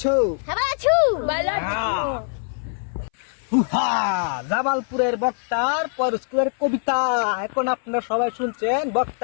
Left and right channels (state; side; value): silent; right; 60 dB below the other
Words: জামালপুরের বক্তার পর স্কুলের কবিতা। এখন আপনারা সবাই শুনছেন